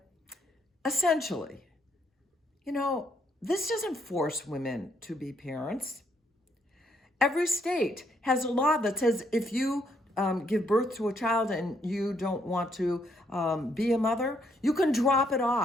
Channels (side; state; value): both; normal; correlation 0.72